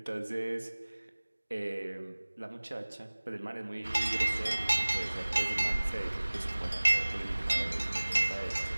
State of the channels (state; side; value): inverted; both; correlation -1.00